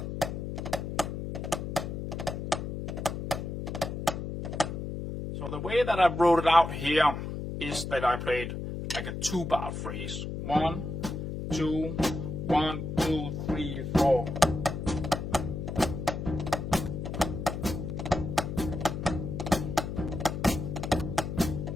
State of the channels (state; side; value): noise; left; hum, 5 dB below the sound